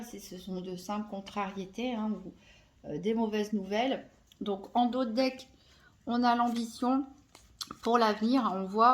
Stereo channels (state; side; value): identical; both; correlation 1.00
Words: si ce sont de simples contrariétés hein, ou des mauvaises nouvelles. Donc en dos de deck, on a l'ambition pour l'avenir. On